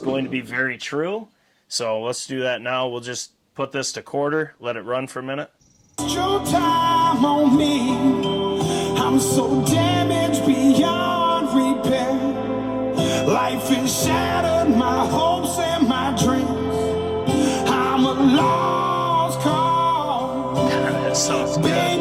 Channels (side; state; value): both; identical; correlation 1.00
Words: going to be very true. So let's do that now. We'll just put this to quarter, let it run for a minute. Your time on me. I'm so damaged beyond repair. Life has shattered my hopes and my dreams. I'm a lost cause. That sounds good.